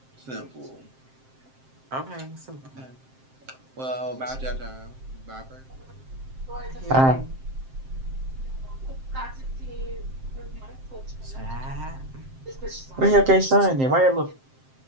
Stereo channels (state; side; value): late; left; 7.6 ms